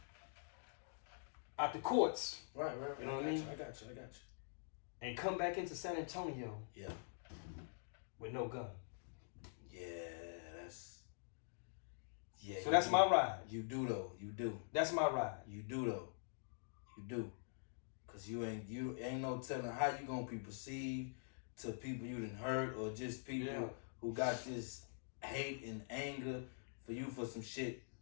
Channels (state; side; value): silent; right; digital silence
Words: Out the courts. Right. You know what I mean? I got you. And come back into San Antonio. Yeah. With no gun. So that's my ride. You do though. You do. That's my ride. You do though. You do. Cause you ain't no telling how you gonna be perceived to people you done hurt or just people who got this hate and anger for you for some shit